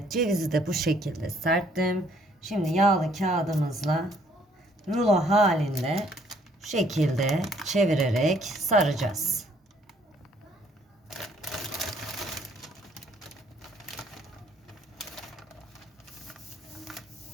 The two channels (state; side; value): normal; both; correlation 0.64